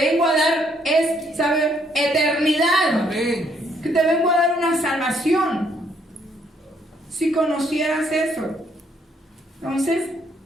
a dar, es, ¿sabe? Eternidad. Amén. Que te vengo a dar una salvación. Si conocieras eso. Entonces,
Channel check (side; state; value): both; normal; correlation 0.69